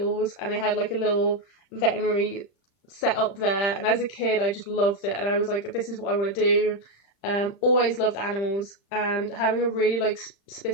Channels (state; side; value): late; right; 35 ms